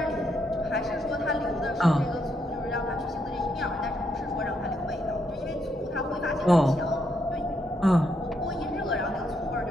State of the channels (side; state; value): both; normal; correlation 0.77